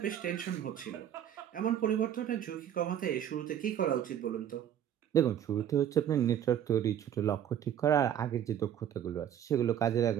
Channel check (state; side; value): quieter; left; 10.0 dB